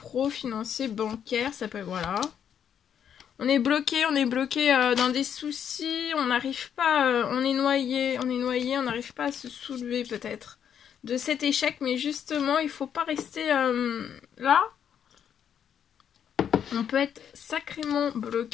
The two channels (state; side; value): quieter; right; 8.6 dB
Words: financier, bancaire, ça peut, voilà. On est bloqué dans des soucis, on n'arrive pas, on est noyé, on n'arrive pas à se soulever peut-être de cet échec, mais justement, il faut pas rester là. On peut être sacrément